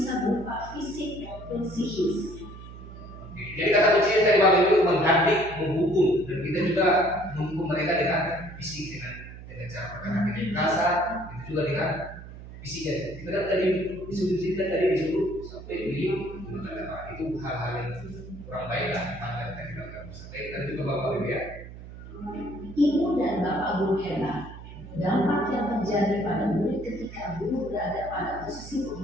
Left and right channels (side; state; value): right; noise; hum, 14 dB below the sound